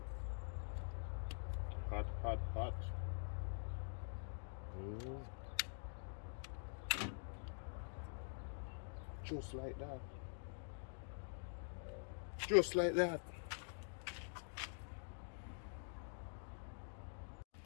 Hot, hot, hot. Just like that. Just like that.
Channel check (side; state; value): right; silent; digital silence